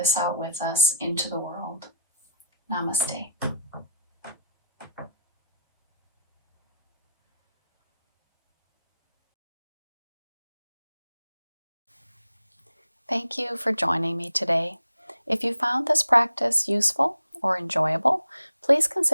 out with us into the world. Namaste. Thank you for joining me today. If you found this practice useful or enjoyable, please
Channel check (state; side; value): inverted; both; correlation -0.74